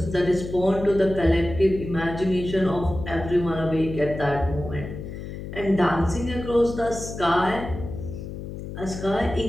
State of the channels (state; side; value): noise; left; hum, 9 dB below the sound